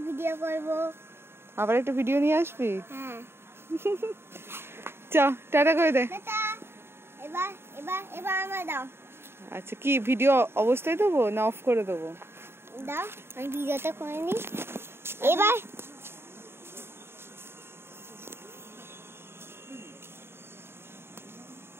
ভিডিও করব। আবার একটা ভিডিও নিয়ে আসবি? হ্যাঁ। চ টাটা করে দে। এবার এবার এবার আমায় দাও। আচ্ছা, কি ভিডিও অবস্থায় দেবো না অফ করে দেবো? দাও, আমি ভিডিওটা করে নি। এবার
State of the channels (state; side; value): late; left; 0.11 ms